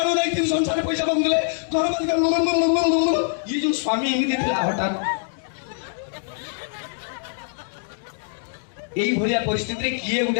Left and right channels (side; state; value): right; silent; digital silence